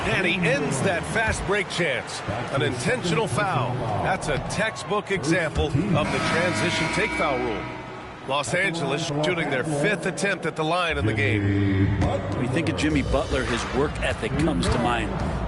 he ends that fast break chance. An intentional foul. That's a textbook example of the transition take foul rule. Los Angeles shooting their 5th attempt at the line in the game. When you think of Jimmy Butler, his work ethic comes to mind.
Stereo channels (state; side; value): identical; both; correlation 1.00